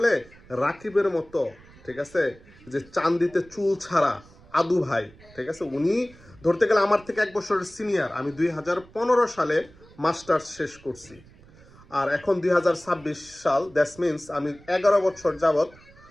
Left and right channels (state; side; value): noise; right; rumble, 24 dB below the sound